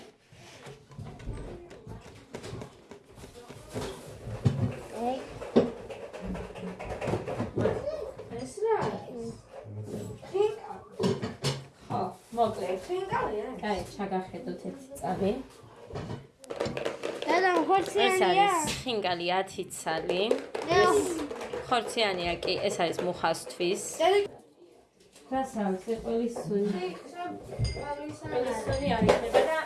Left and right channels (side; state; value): both; identical; correlation 1.00